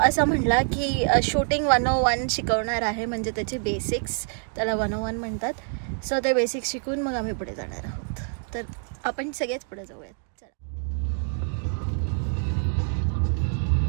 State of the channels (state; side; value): silent; left; 55 dB below the other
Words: असं म्हटला की शूटिंग 101 शिकवणार आहे, म्हणजे त्याचे बेसिक्स त्याला 101 म्हणतात. सो ते बेसिक्स शिकून मग आम्ही पुढे जाणार आहोत. तर आपण सगळेच पुढे जाऊयात.